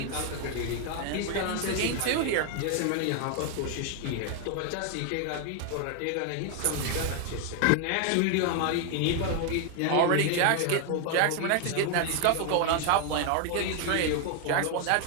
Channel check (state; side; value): different; both; correlation 0.00